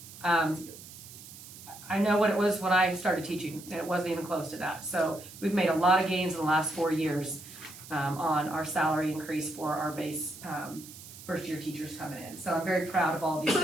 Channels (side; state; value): right; noise; hiss, 16 dB below the sound